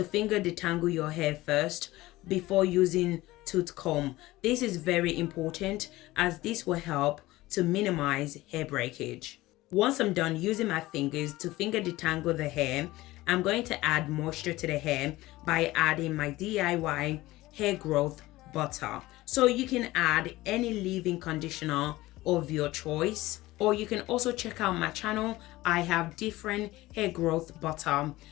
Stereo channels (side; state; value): right; quieter; 18.2 dB